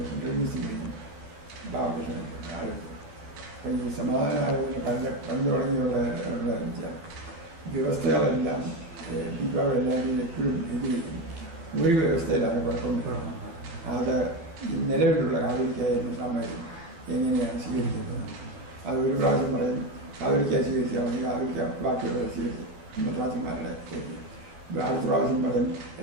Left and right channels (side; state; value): left; late; 12 ms